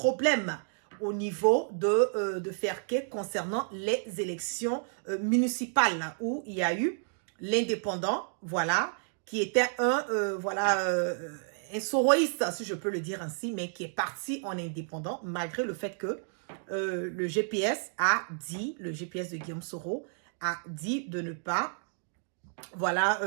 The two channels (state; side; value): silent; left; digital silence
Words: au niveau de Ferké concernant les élections municipales où il y a eu l'indépendant, voilà, qui était un soroïste, si je peux le dire ainsi, mais qui est parti en indépendant, malgré le fait que le GPS de Guillaume Soro a dit de ne pas, voilà,